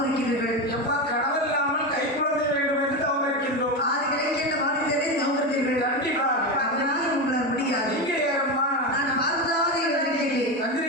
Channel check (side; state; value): both; normal; correlation 0.17